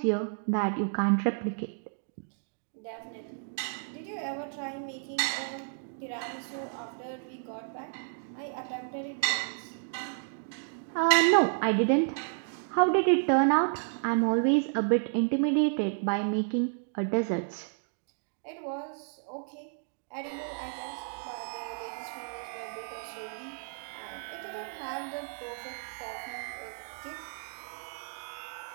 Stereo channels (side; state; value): left; silent; digital silence